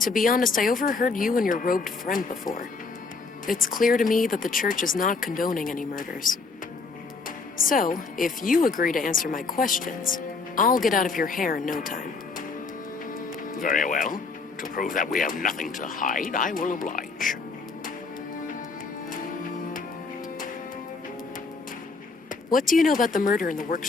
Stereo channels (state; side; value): quieter; right; 4.3 dB